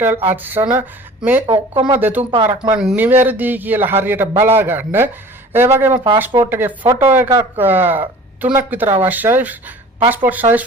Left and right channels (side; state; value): both; normal; correlation 0.44